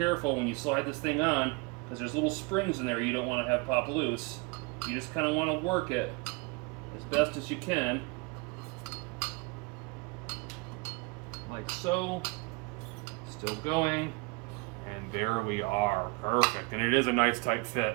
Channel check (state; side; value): quieter; left; 28.1 dB